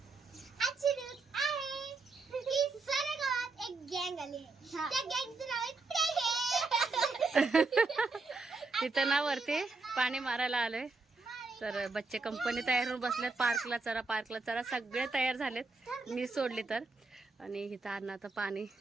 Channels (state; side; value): quieter; left; 3.8 dB